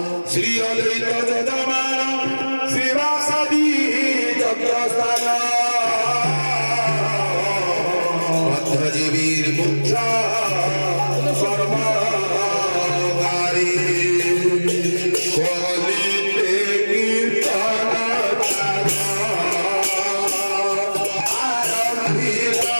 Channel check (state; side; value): inverted; both; correlation -1.00